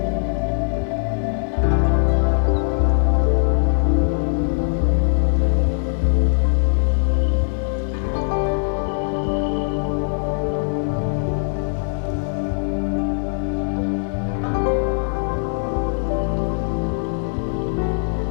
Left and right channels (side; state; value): right; silent; digital silence